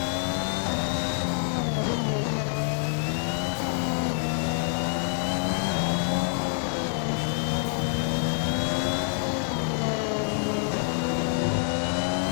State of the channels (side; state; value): right; silent; 60 dB below the other